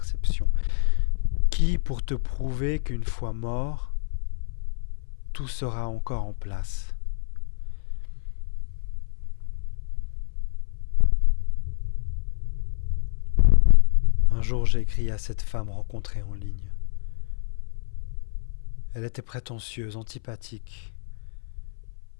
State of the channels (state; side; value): silent; right; 57 dB below the other